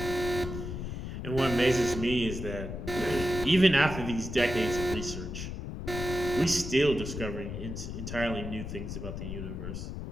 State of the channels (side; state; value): left; noise; rumble, 6 dB below the sound